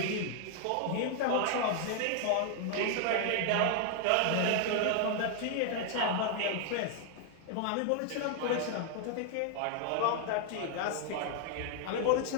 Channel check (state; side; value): different; both; correlation 0.00